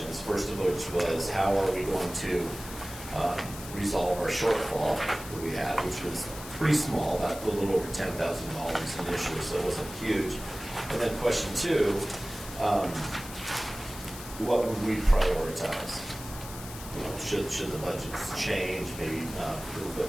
First of which was, how are we going to resolve our shortfall that we had, which was pretty small, about a little over $10,000 initially, so it wasn't huge. And then question two, what would we prioritize? You know, should the budgets change, maybe a little bit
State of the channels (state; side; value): noise; left; hiss, 13 dB below the sound